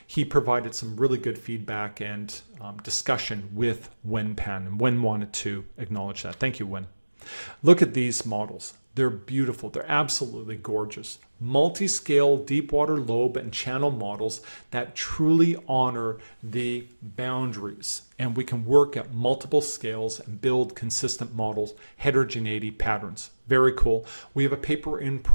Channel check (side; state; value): both; inverted; correlation -1.00